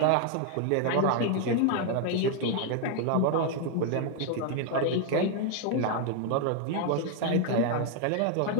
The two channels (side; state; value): both; different; correlation 0.00